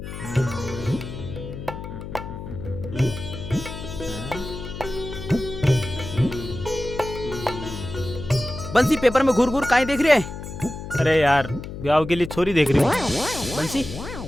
बंसी पेपर में घूर काहे देख रहे है? अरे यार, ब्याह के लिए छोरी देख रही हूँ। बंसी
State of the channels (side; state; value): left; noise; hum, 9 dB below the sound